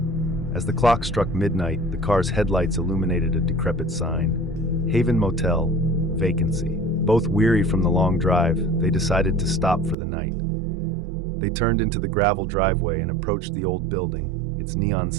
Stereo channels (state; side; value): drops out; left; at 10.0 s